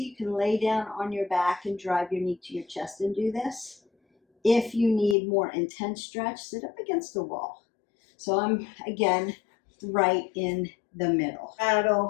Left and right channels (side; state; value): right; drops out; at 5.2 s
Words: you can lay down on your back and drive your knee to your chest and do this. If you need more intense stretch, sit up against the wall. So I'm, again, right in the middle.